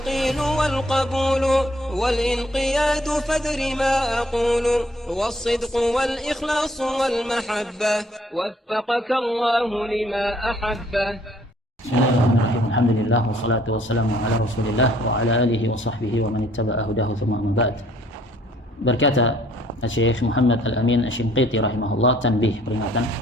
والقبول والانقياد فادر ما أقول والصدق والإخلاص والمحبة وفقك الله لما أحبه. Bismillahirrahmanirrahim. Alhamdulillah wassalatu wassalamu ala Rasulillah wa ala alihi wa sahbihi wa man ittaba'a hudahu thumma amma ba'd. Berkata Syekh Muhammad Al-Amin Asy-Shinqiti rahimahullah, tanbih, peringatan.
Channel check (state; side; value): normal; both; correlation 0.62